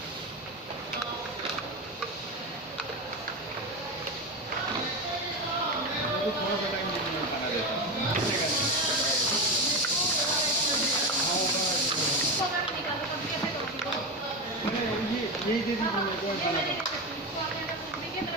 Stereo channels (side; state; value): both; normal; correlation 0.18